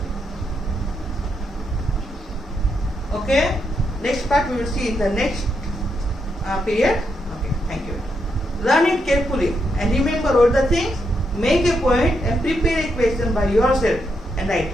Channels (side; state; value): both; normal; correlation 0.81